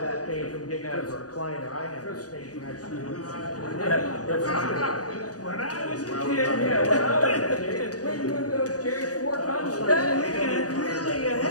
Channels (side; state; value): right; late; 0.67 ms